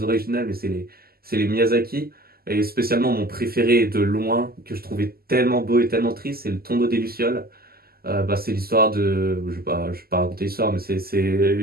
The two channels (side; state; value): left; late; 0.45 ms